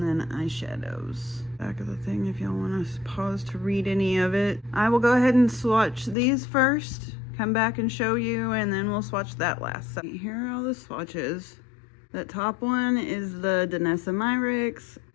then eyeshadows. Back of the thing if y'all want to pause to read any of it. I will go ahead and swatch these first, come back and show you, and then we'll swatch that last. So here are all the swatches. That top one is the Danessa Myricks.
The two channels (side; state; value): right; drops out; at 6.2 s